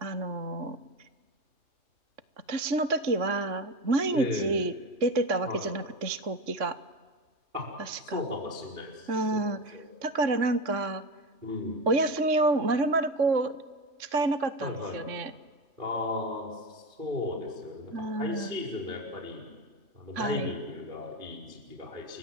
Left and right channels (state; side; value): late; left; 3.6 ms